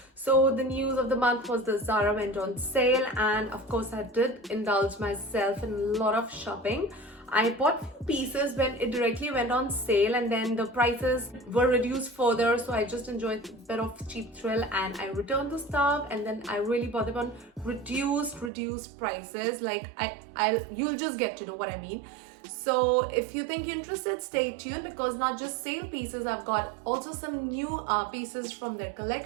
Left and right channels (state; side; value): drops out; left; at 18.5 s